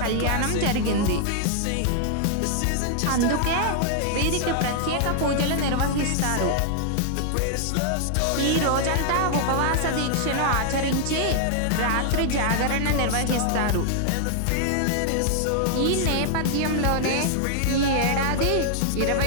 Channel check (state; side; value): different; both; correlation 0.00